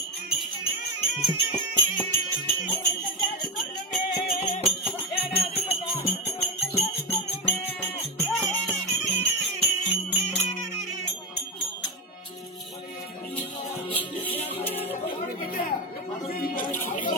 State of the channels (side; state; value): both; normal; correlation 0.15